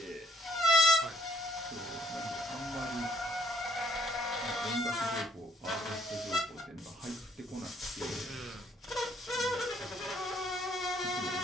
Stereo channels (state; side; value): normal; both; correlation 0.67